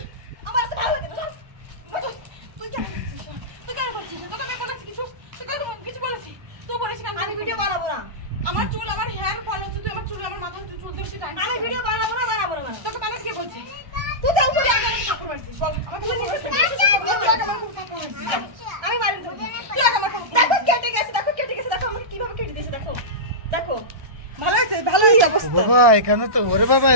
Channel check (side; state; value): left; late; 1.3 ms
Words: আমার চুল আমার হেয়ার ফল হচ্ছে তুই আমার চুল আমার মাথা চুল দেখছিস আমি ভিডিও বানাবো না তোকে বানাতে কে বলছে তুই তো উপরে আগে আমাকে থাপ্পড় মারছিস বল আমাকে আমি মারি দেব তুই আগে আমাকে দেখো কেটে গেছে দেখো আমাকে কিভাবে কেটে দিয়েছে দেখো ভালো হয়েছে অবস্থা বাবা এখানে তো ওরে বাবা